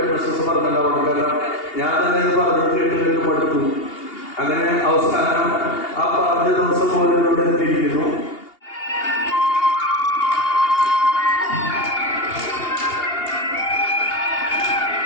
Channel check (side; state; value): right; late; 2.8 ms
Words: പറഞ്ഞിട്ടുണ്ടാവണം. കാരണം ഞാൻ തന്നെ ഇത് പറഞ്ഞത് കേട്ട് മടുത്തു. അങ്ങനെ അവസാനം ആ പറഞ്ഞ ദിവസം പോലും ഇവിടെ എത്തിയിരിക്കുന്നു.